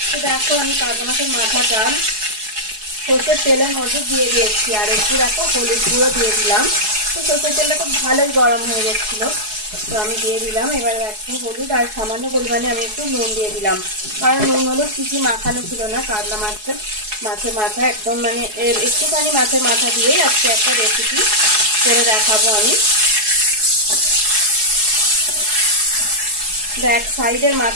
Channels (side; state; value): left; late; 4.7 ms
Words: তো দেখো আমি কাতলা মাছের মাথাটা সর্ষের তেলের মধ্যে দিয়ে দিয়েছি আর একটু দেখো হলুদ গুঁড়ো দিয়ে দিলাম। তো সর্ষের তেলটা খুব ভালোই গরম হয়ে গেছিল, তো আমি দিয়ে দিলাম। এবার একটু হলুদ আর সামান্য পরিমাণে আমি একটু নুন দিয়ে দিলাম, কারণ নুন হলুদ কিছু মাখানো ছিল না। কাতলা মাছের মাথা একদম মানে একটুখানি মাছের মাথা দিয়েই আজকে একটা রেসিপি করে দেখাবো আমি। ব্যাক সাইডের